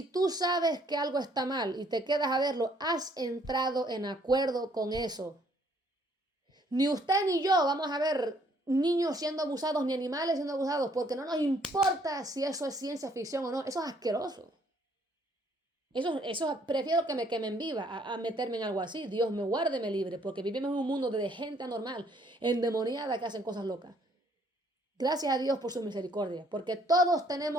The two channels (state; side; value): normal; both; correlation 0.65